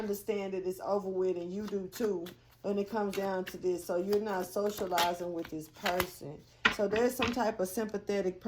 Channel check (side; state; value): both; identical; correlation 1.00